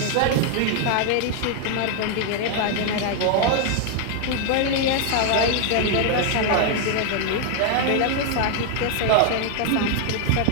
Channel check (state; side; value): different; both; correlation 0.00